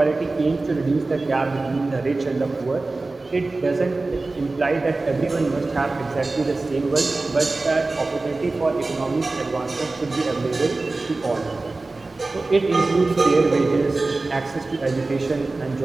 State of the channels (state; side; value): quieter; left; 3.4 dB